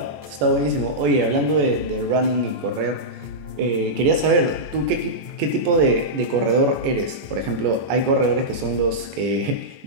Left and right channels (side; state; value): left; late; 14 ms